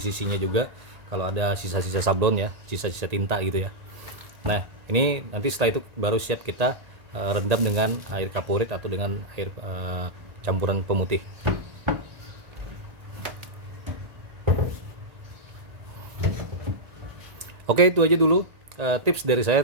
juga. Kalau ada sisa-sisa sablon ya, sisa-sisa tinta gitu ya. Nah, ini nanti setelah itu baru siap kita rendam dengan air kaporit atau dengan air campuran pemutih. Oke, itu aja dulu tips dari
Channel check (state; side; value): late; left; 1.8 ms